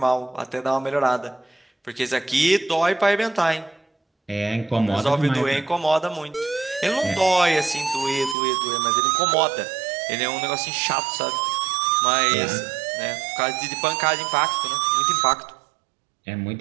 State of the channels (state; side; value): drops out; left; at 8.3 s